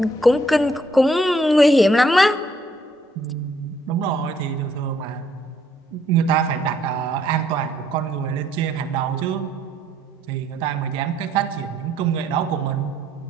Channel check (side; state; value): both; normal; correlation 0.68